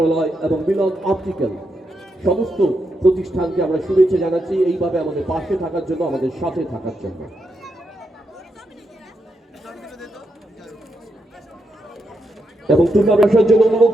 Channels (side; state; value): both; normal; correlation 0.83